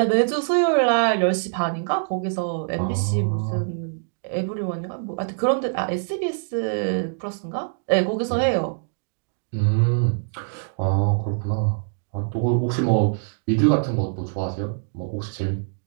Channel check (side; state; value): left; silent; digital silence